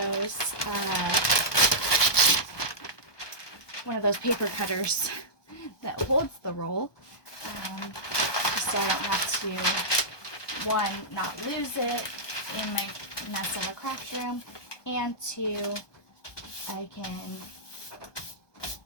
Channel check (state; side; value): late; right; 1.2 ms